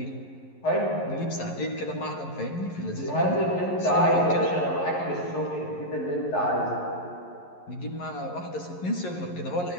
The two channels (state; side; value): late; right; 11 ms